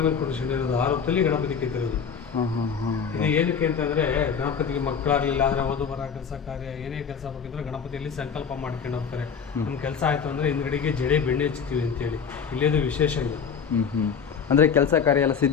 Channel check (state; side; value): quieter; right; 6.6 dB